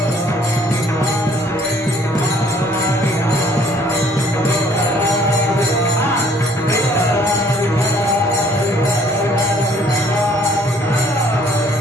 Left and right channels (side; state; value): both; normal; correlation 0.60